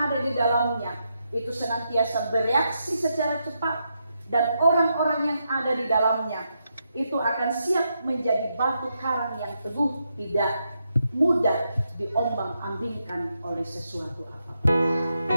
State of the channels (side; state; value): both; inverted; correlation -0.82